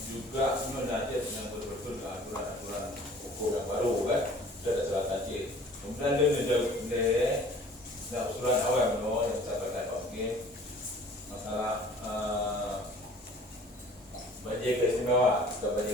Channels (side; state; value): both; normal; correlation 0.50